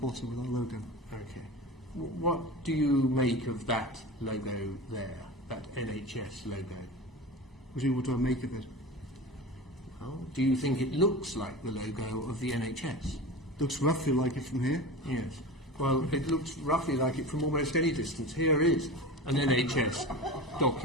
with our logo. Okay. What do you make of that logo there, that NHS logo? What do I make of it? Well, do you think it looks like the logo of the NHS? Looks roughly like it from here. Yes. Well, it looks roughly like it from almost any distance. Here is an NHS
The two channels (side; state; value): both; normal; correlation 0.31